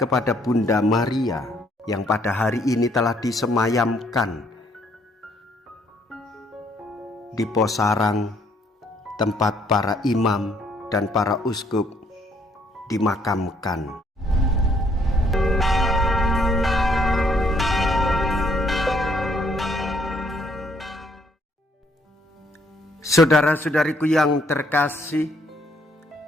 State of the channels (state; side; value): normal; both; correlation 0.67